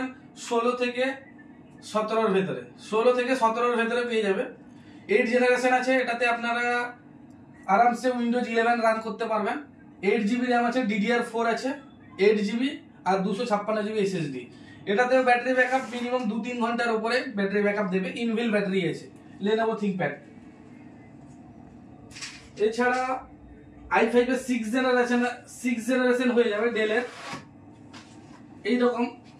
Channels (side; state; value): both; identical; correlation 1.00